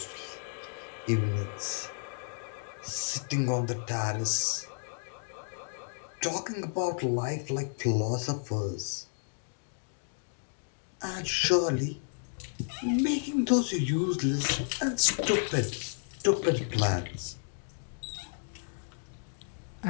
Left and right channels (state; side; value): silent; right; digital silence